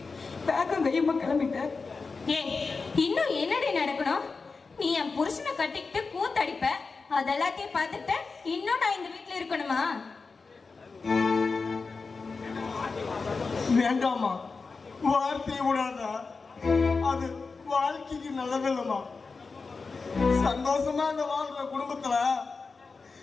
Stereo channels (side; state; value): right; quieter; 4.4 dB